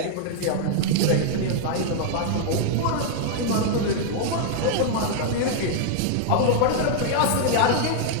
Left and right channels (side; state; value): both; different; correlation -0.01